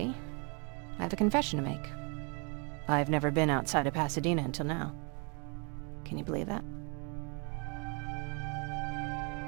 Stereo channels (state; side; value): quieter; left; 34.1 dB